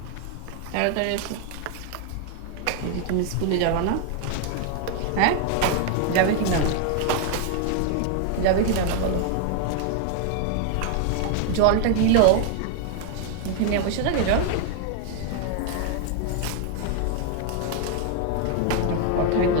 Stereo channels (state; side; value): different; both; correlation 0.00